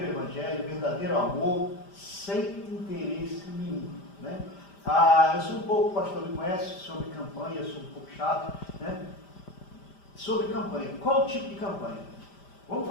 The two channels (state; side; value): late; right; 5.1 ms